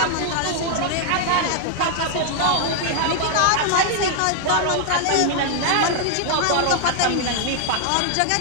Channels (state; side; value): different; both; correlation -0.01